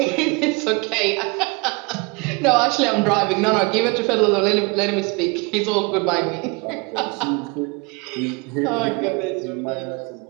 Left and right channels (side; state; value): left; quieter; 28.6 dB